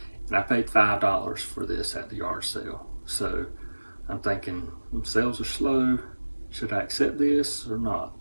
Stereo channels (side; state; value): both; inverted; correlation -1.00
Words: and I paid $5 for this at the yard sale. So I'm thinking, sales are slow, should I accept this or